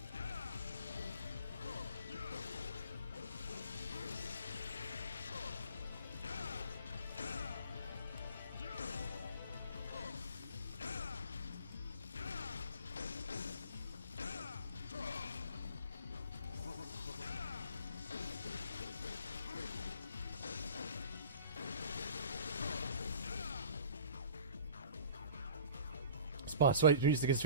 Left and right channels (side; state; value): both; inverted; correlation -0.45